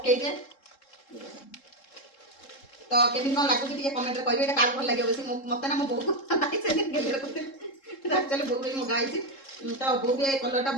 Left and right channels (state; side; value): late; right; 3.7 ms